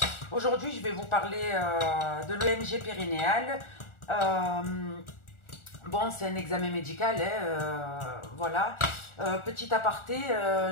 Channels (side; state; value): right; late; 1.4 ms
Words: aujourd'hui je vais vous parler de l'EMG périnéal. Bon, c'est un examen médical, voilà. Petit aparté,